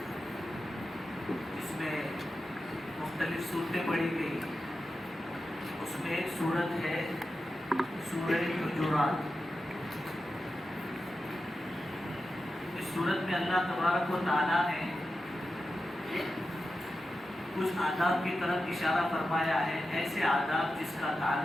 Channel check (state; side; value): normal; both; correlation 0.91